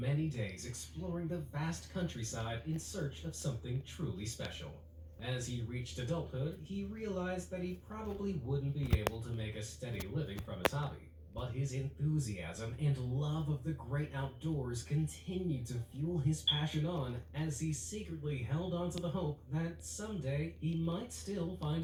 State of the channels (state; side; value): identical; both; correlation 1.00